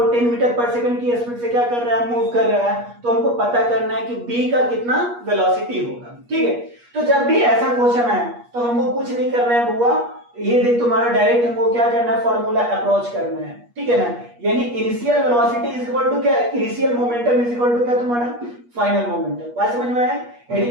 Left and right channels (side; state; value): left; late; 8.4 ms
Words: 10 मीटर पर सेकंड की स्पीड से क्या कर रहा है, मूव कर रहा है। तो हमको पता करना है कि बी का कितना वेलोसिटी होगा, ठीक है। तो जब भी ऐसा क्वेश्चन है तो हमको कुछ नहीं करना है बुआ, ये देख तुम्हारा डायरेक्ट हमको क्या करना है, फॉर्मूला अप्रोच करना है, ठीक है ना। यानी initial velocity is equal to क्या, initial momentum is equal to क्या तुम्हारा फाइनल मोमेंटम। बात समझ में आया। यानी